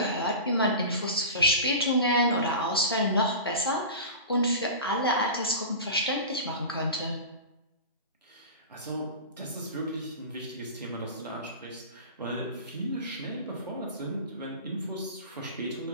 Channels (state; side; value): inverted; both; correlation -0.31